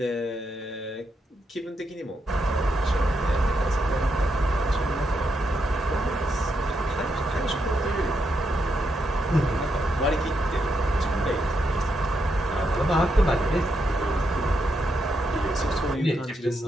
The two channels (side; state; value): both; normal; correlation 0.81